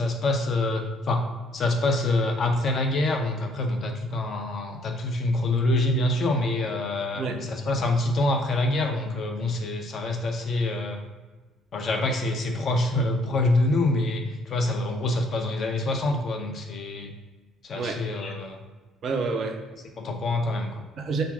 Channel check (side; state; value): both; normal; correlation 0.65